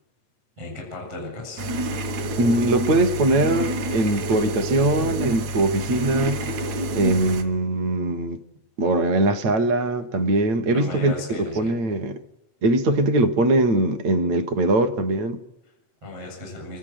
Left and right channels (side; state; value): left; late; 8.9 ms